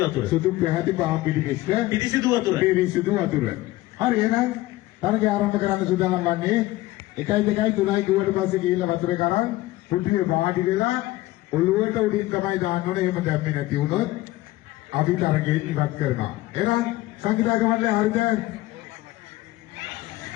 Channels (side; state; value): right; quieter; 17.7 dB